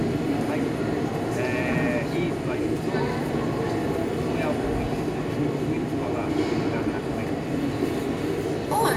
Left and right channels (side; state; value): both; identical; correlation 1.00